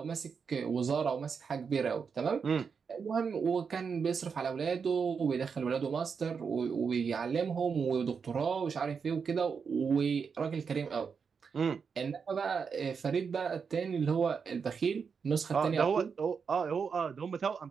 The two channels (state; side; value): quieter; left; 5.9 dB